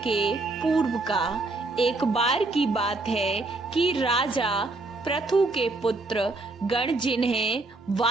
के पूर्व का। एक बार की बात है कि राजा पृथु के पुत्र गण, जिन्हें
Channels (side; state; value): left; quieter; 3.2 dB